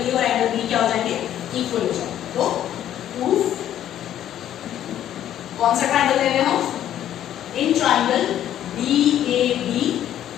और एंगल B क्या हो जाएंगे? इक्वल हो जाएंगे। तो प्रूफ कौन सा ट्रायंगल ले रहे हैं हम? In triangle DAB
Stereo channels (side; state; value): right; quieter; 11.3 dB